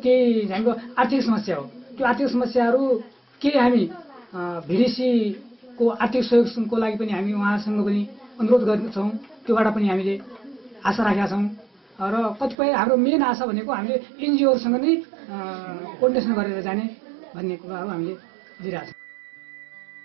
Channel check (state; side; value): drops out; left; at 12.6 s